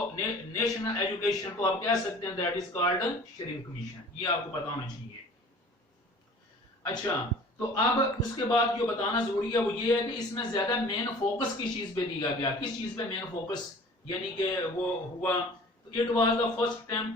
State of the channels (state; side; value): normal; both; correlation 0.46